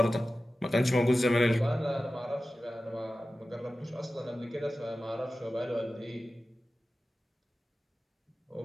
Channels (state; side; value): normal; both; correlation 0.95